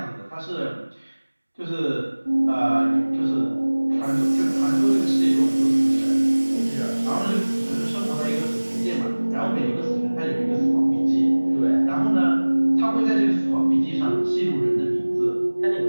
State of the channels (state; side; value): inverted; both; correlation -1.00